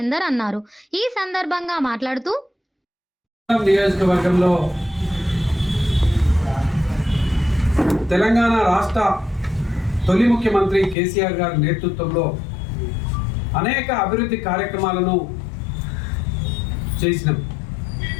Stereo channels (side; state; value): right; drops out; at 11.0 s